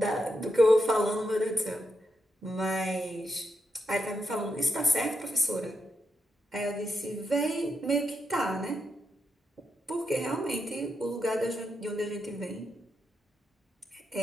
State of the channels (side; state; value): both; normal; correlation 0.84